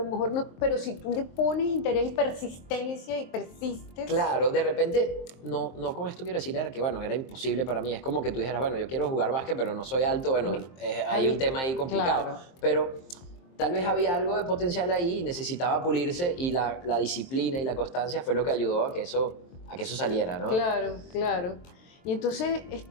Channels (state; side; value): late; right; 23 ms